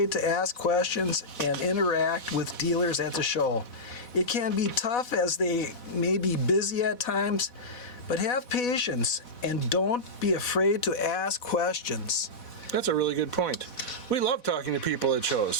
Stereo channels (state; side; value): late; right; 4.1 ms